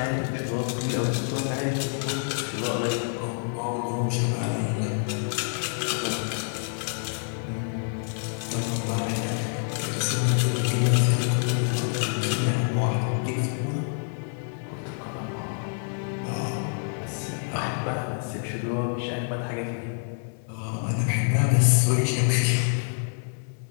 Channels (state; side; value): silent; right; digital silence